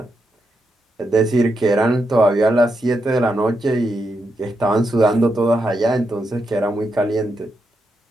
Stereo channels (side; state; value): both; normal; correlation 0.83